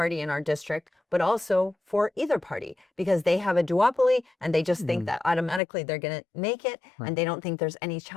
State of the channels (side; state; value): right; drops out; at 5.6 s